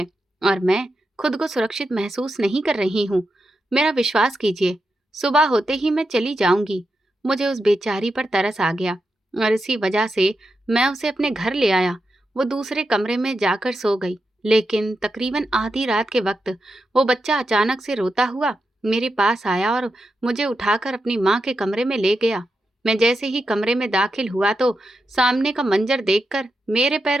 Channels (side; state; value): both; normal; correlation 0.87